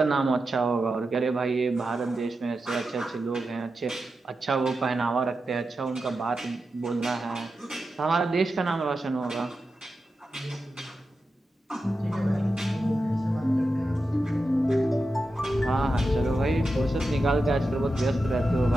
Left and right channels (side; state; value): both; normal; correlation 0.90